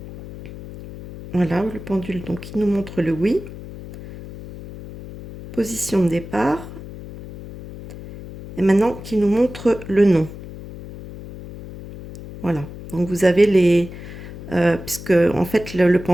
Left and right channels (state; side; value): noise; left; hum, 13 dB below the sound